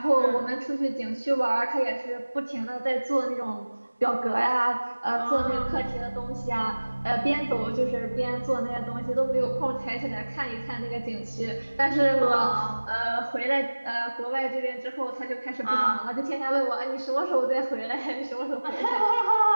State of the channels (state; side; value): inverted; both; correlation -1.00